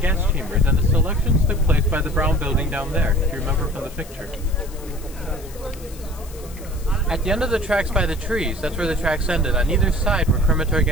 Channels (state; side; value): noise; left; hiss, 20 dB below the sound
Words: gas chambers, and the selections took place by the brown building down there, if you remember from the picture. At the end of the tracks by the trees, that's where the tracks ended. On either side were crematory